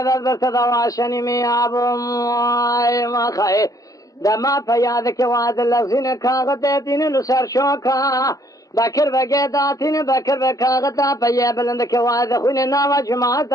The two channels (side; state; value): right; late; 0.17 ms